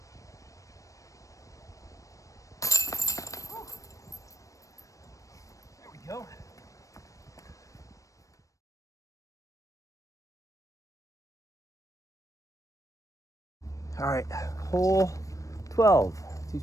There we go. All right, hole 12,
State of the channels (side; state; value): right; late; 0.16 ms